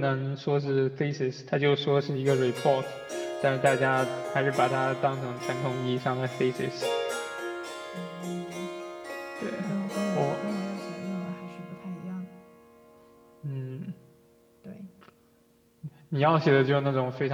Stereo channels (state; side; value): identical; both; correlation 1.00